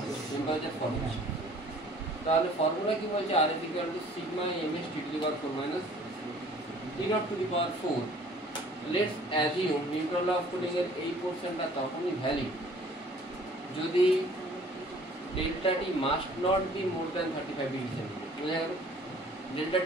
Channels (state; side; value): normal; both; correlation 0.53